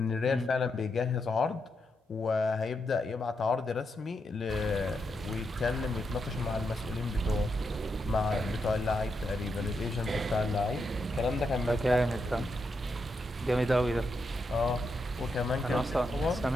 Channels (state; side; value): normal; both; correlation 0.83